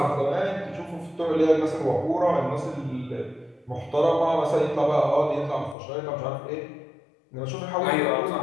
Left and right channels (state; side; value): drops out; right; at 5.8 s